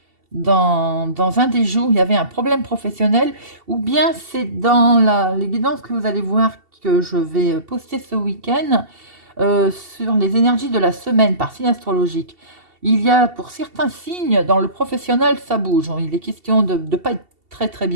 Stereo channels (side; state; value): left; late; 2.7 ms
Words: Dans un des jours, il y avait un problème professionnel, ou bien c'est dans les guidances que vous allez voir que je vais poster ce week-end sur les énergies de la semaine par signe astrologique. Il y a pour certains signes, dans le professionnel, ça bouge. Il est question de ne pas être très très